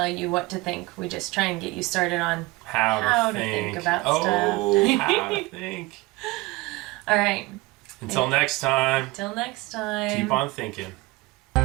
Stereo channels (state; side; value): quieter; left; 21.9 dB